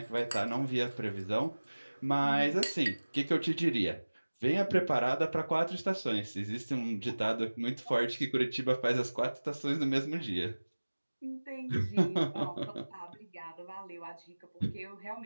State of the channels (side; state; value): both; inverted; correlation -1.00